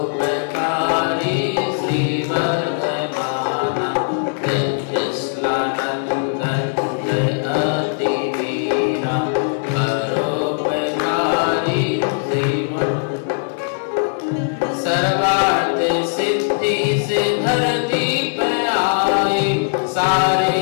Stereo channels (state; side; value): silent; right; digital silence